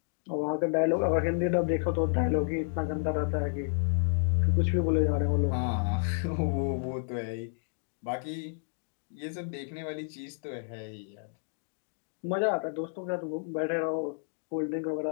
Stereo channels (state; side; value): silent; right; digital silence